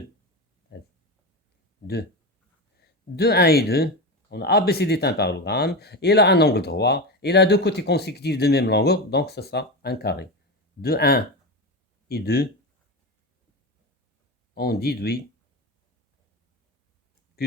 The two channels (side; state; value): both; normal; correlation 0.20